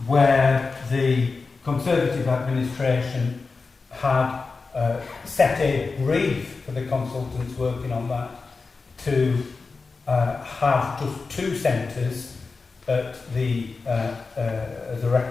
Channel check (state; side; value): quieter; right; 4.3 dB